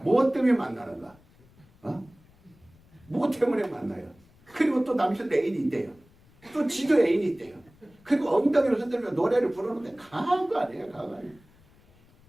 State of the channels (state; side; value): noise; left; rumble, 29 dB below the sound